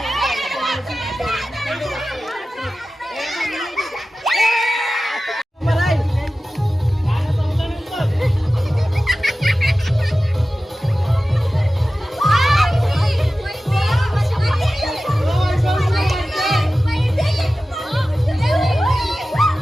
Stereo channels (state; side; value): normal; both; correlation 0.95